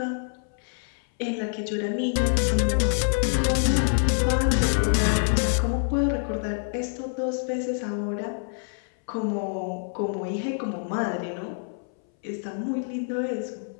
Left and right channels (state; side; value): silent; right; 61 dB below the other